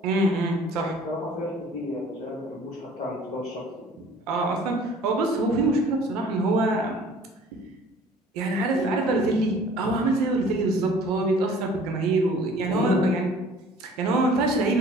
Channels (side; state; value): both; normal; correlation 0.51